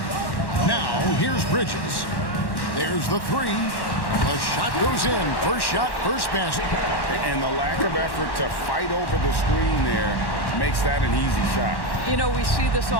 Now, here's Bridges. There's the 3. The shot goes in. First shot, first basket. And the lack of effort to fight over the screen there makes that an easy shot. You know, we see this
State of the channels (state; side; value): late; right; 1.1 ms